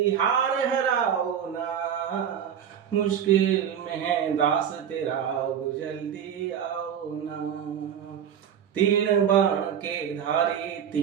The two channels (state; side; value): quieter; left; 8.7 dB